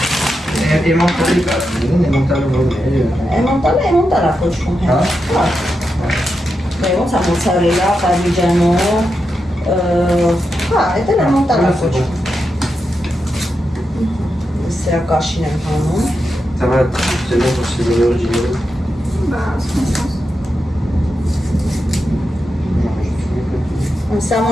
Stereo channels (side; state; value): both; normal; correlation 0.87